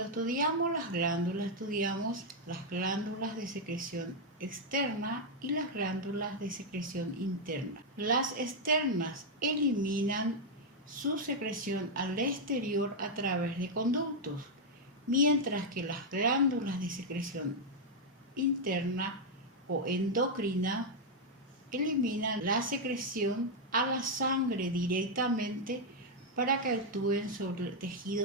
estudiamos las glándulas, estudiamos las glándulas de secreción externa y las glándulas de secreción interna. Las externas eliminan su secreción al exterior a través de conductos, mientras que las glándulas de secreción interna o endocrina eliminan la secreción a la sangre directamente para que actúen sobre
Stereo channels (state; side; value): normal; both; correlation -0.01